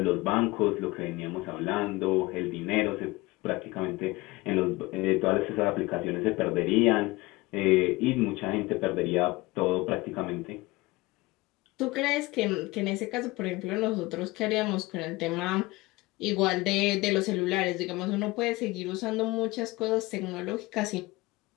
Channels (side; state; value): right; quieter; 21.5 dB